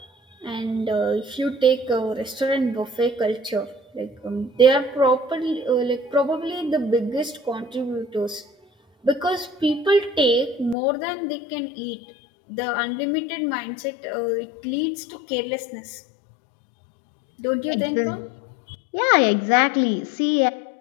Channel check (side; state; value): right; drops out; at 10.8 s